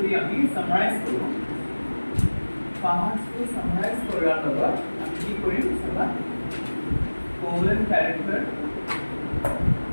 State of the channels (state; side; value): inverted; both; correlation -1.00